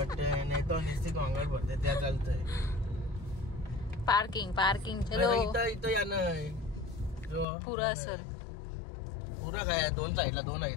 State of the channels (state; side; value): drops out; right; at 7.5 s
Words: नाही तर नुसती गोंगाट भरते त्या चालतंय. पार्किंग चलो. इथं या ना पुरा असेल पुरा काय 2 साईडला 2